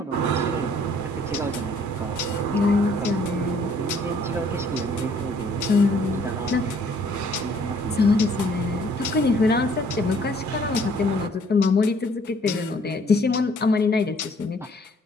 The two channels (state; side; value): normal; both; correlation 0.61